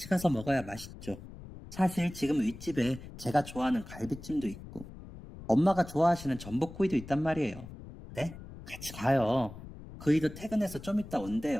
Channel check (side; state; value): left; noise; rumble, 14 dB below the sound